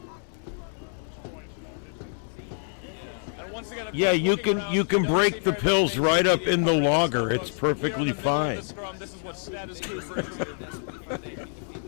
Yeah, you can break the pills right up in the logger. It's perfectly fine. This is what status quo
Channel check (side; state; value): right; silent; 60 dB below the other